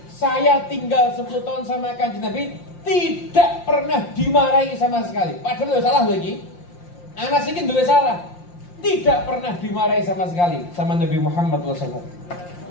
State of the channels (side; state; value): right; late; 5.7 ms